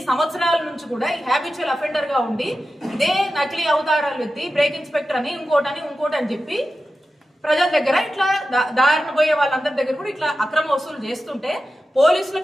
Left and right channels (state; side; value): normal; both; correlation 0.92